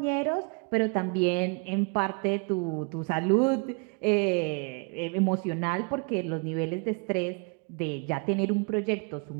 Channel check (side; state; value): left; quieter; 34.9 dB